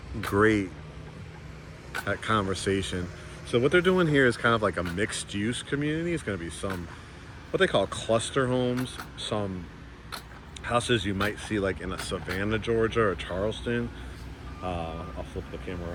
Great at conversation. So what they're doing here is kind of like a mixed use community. It's going to be some, what they call cluster homes, some houses you might see like in a Savannah, Georgia or Charleston. I'll flip the camera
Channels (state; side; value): identical; both; correlation 1.00